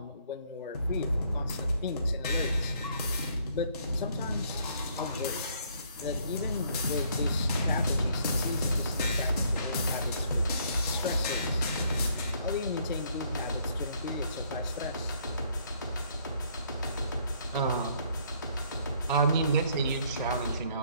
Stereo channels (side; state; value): both; inverted; correlation -0.65